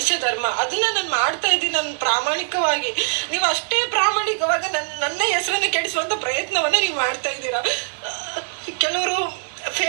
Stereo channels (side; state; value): left; silent; digital silence